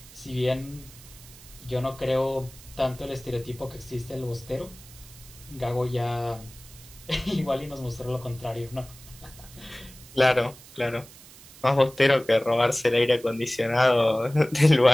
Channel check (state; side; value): noise; right; hiss, 20 dB below the sound